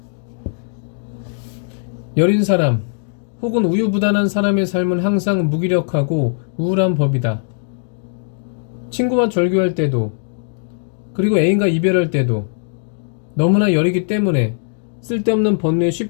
여린 사람 혹은 우유부단한 사람의 삶은 항상 무기력하고 우울한 법이다. 친구와 절교할 때도, 그리고 애인과 이별할 때도 너무나 여리기 때문에 쓸데없는 번뇌에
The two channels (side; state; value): right; silent; digital silence